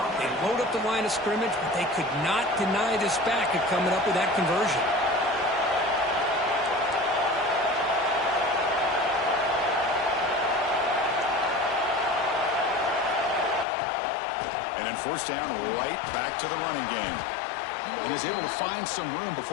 They load up the line of scrimmage, but they could not deny this back of coming up with that conversion. And then first down, right back to the running game. And he's able to find some room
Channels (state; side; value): drops out; right; at 13.7 s